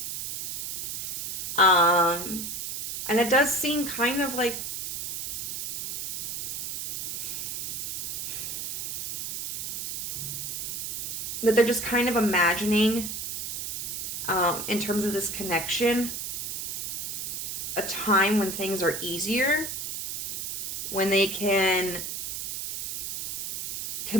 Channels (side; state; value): right; noise; hiss, 5 dB below the sound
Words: And it does seem kind of like that they're just kind of imagining, in terms of this connection, a time when things are easier, when they can